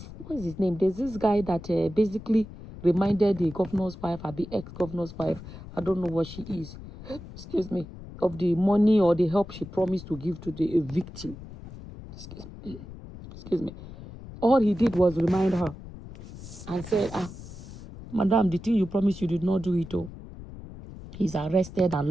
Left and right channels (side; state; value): left; noise; rumble, 14 dB below the sound